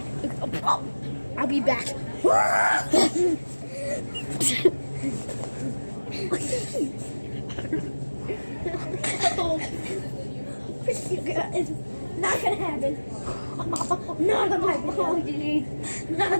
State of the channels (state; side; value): inverted; both; correlation -1.00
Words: I'll be back. It's not gonna happen. Not on my video. Not